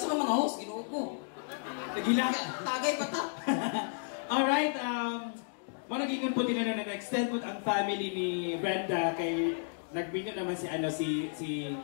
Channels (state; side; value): silent; right; digital silence